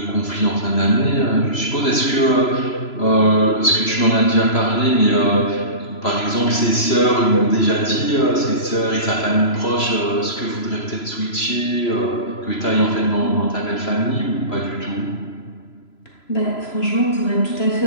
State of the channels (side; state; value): right; late; 3.0 ms